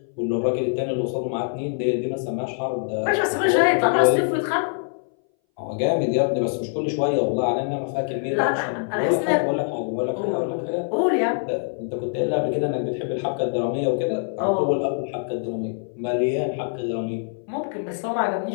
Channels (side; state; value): right; silent; 60 dB below the other